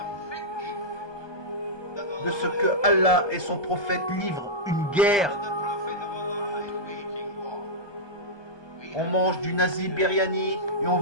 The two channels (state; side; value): late; right; 1.2 ms